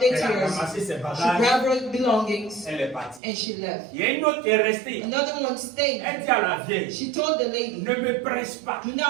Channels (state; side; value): drops out; left; at 3.2 s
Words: Elle a tears. ramassé ses She bagages. grabbed her belongings Elle est partie. and she left. Il y a une autre qui est restée. Another one stayed. Elle dit à la vieille, She told the lady, ne me presse pas, do